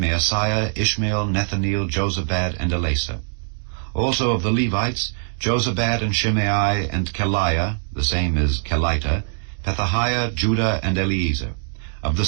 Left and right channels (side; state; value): left; silent; digital silence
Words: Ishmael, Nethaneel, Jozabad, and Elasa. Also of the Levites, Jozabad and Shimei and Keliah, the same is Kelita, Pethahiah, Judah, and Eliezer. Of the